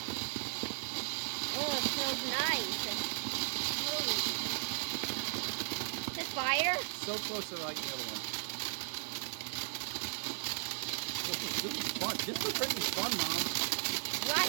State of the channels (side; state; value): left; silent; digital silence